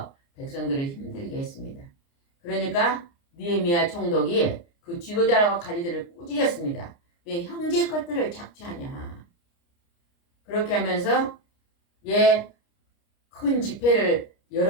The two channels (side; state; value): right; late; 29 ms